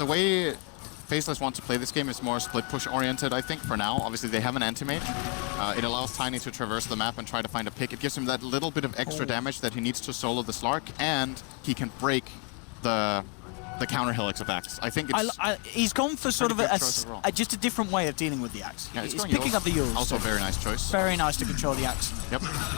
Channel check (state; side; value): quieter; right; 36.1 dB